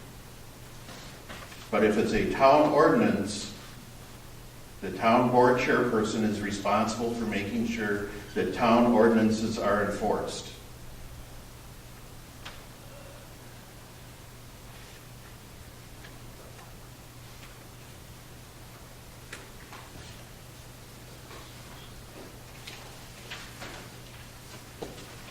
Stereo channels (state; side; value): identical; both; correlation 1.00